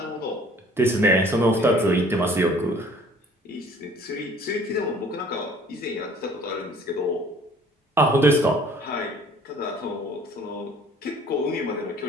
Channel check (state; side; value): normal; both; correlation 0.54